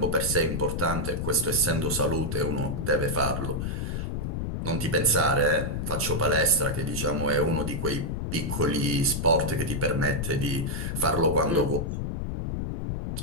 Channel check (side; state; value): left; noise; rumble, 3 dB below the sound